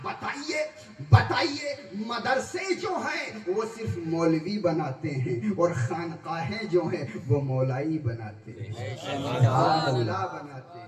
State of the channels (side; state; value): both; identical; correlation 1.00